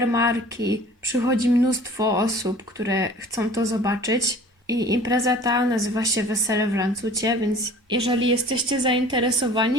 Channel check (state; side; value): normal; both; correlation 0.47